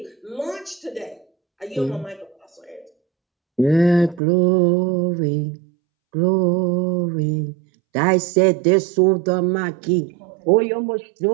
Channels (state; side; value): drops out; left; at 4.2 s